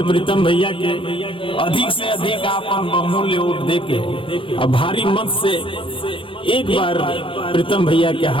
प्रीतम भैया के अधिक से अधिक आप बहुमूल्य वोट देके और भारी मत से एक बार प्रीतम भैया के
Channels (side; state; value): right; late; 0.25 ms